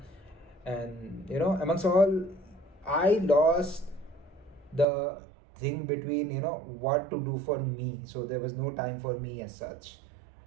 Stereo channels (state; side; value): drops out; left; at 4.9 s